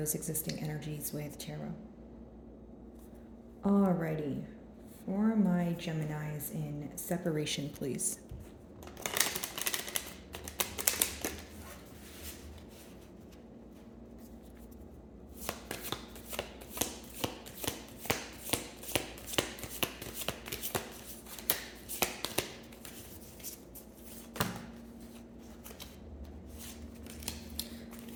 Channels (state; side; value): identical; both; correlation 1.00